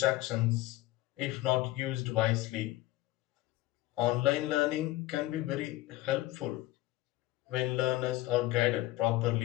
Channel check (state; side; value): quieter; right; 17.4 dB